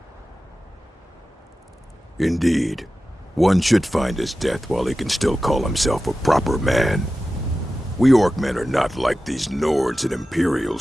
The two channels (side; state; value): both; normal; correlation 0.94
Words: Indeed, one should find his death while he can still call himself a proper man. We Orcmen are not like these Nords and